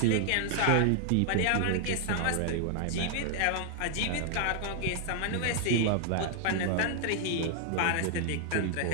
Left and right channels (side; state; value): both; different; correlation 0.00